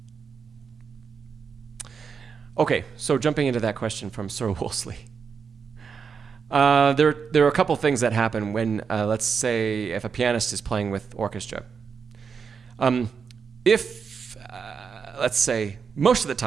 Okay, so jumping into that question from Sir Wolseley. There are a couple things that happen when, let's say, if a pianist is playing with orchestra. Let's say, most of the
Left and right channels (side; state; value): left; quieter; 6.1 dB